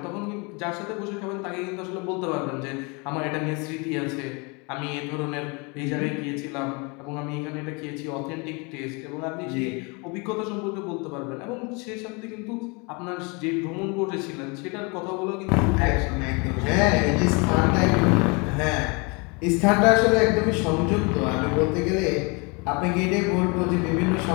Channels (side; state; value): right; quieter; 30.2 dB